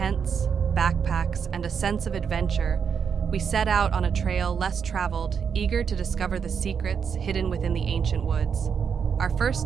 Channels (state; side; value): quieter; left; 6.8 dB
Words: backpacks, and a sense of adventure, we set out on a trail less traveled, eager to discover the secrets hidden within the ancient woods. Our first